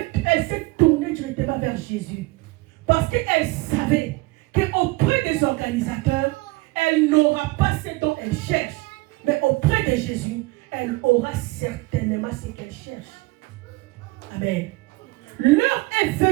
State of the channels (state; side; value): quieter; left; 22.3 dB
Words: s'est tournée directement vers Jésus. Parce qu'elle savait qu'auprès des organisateurs, elle n'aura pas ce dont elle cherche. Mais auprès de Jésus, elle aura certainement ce qu'elle cherche. Amen. L'heure est